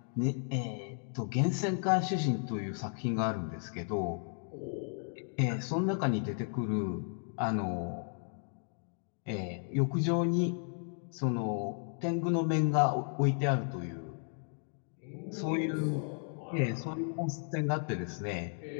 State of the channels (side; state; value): right; silent; 55 dB below the other